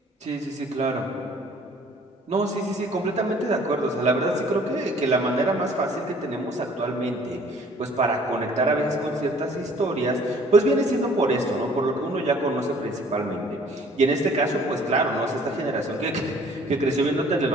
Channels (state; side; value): normal; both; correlation 0.55